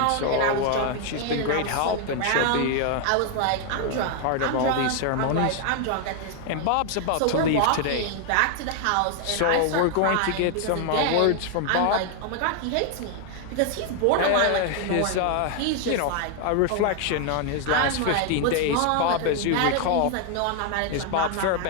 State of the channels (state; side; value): different; both; correlation 0.00